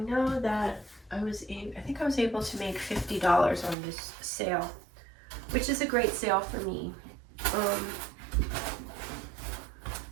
know that I think I was able to make $50 on this sale, which is a great sale for me.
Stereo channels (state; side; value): drops out; left; at 3.8 s